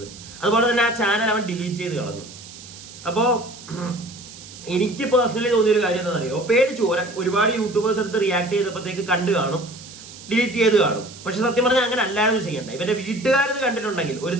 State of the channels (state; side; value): noise; right; hiss, 17 dB below the sound